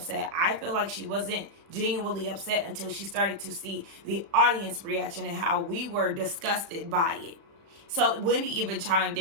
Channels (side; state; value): left; late; 36 ms